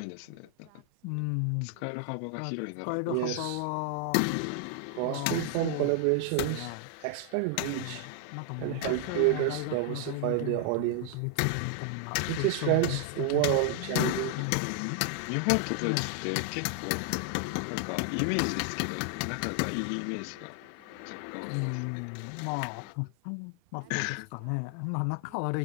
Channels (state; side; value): different; both; correlation 0.00